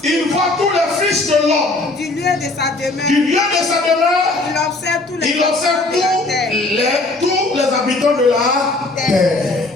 Il voit tous les fils de l'homme. Du lieu de sa demeure. Du lieu de sa demeure. Il observe tous les tous les habitants de la terre.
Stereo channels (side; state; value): right; quieter; 3.0 dB